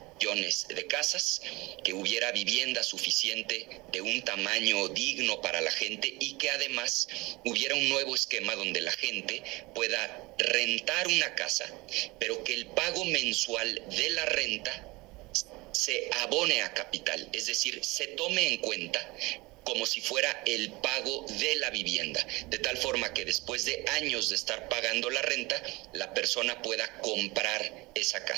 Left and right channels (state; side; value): quieter; left; 23.1 dB